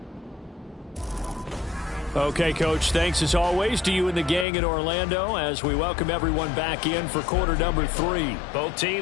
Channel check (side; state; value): right; drops out; at 4.5 s